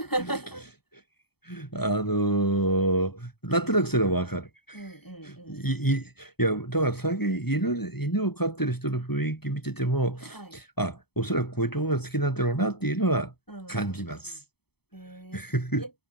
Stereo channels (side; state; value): right; late; 0.97 ms